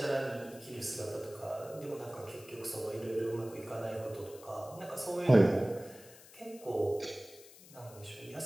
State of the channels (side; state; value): left; noise; hiss, 20 dB below the sound